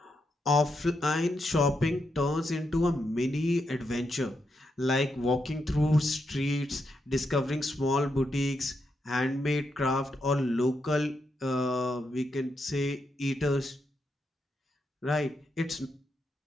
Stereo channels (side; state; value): both; normal; correlation 0.83